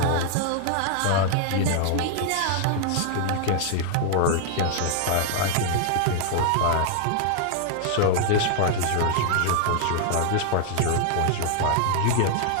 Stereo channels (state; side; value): different; both; correlation 0.00